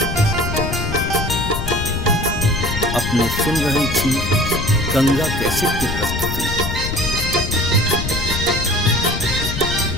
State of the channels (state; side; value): noise; left; rumble, 4 dB below the sound